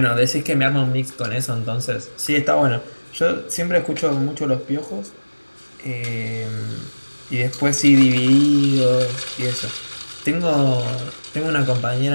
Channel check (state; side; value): inverted; both; correlation -1.00